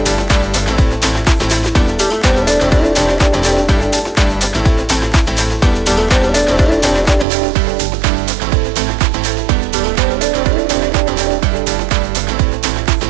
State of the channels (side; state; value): left; drops out; at 7.2 s